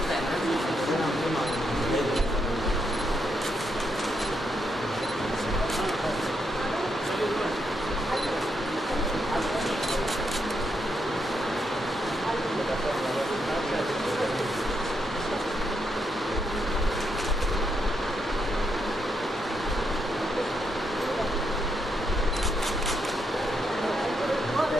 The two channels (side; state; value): both; normal; correlation 0.80